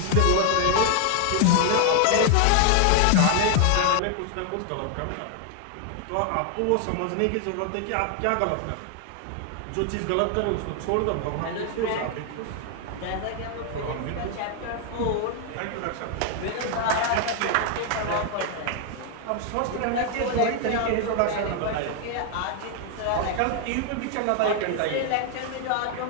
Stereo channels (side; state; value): both; different; correlation 0.00